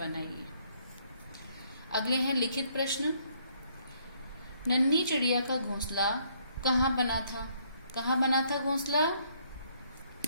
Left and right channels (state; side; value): inverted; both; correlation -0.68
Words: अगले हैं लिखित प्रश्न। नन्ही चिड़िया का घोंसला कहाँ बना था? कहाँ बना था घोंसला?